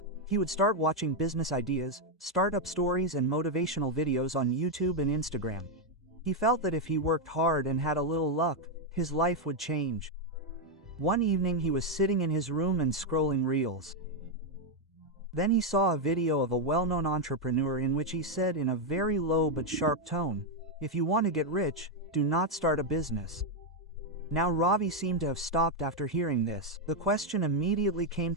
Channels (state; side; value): normal; both; correlation 0.02